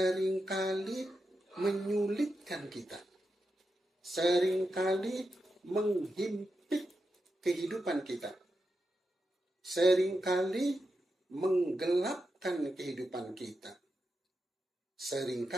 menyulitkan kita. Seringkali menghimpit kehidupan kita. Seringkali menggelapkan kehidupan kita.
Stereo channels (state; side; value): normal; both; correlation 0.87